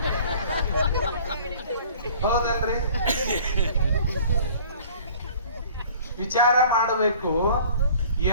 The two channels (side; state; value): both; inverted; correlation -0.49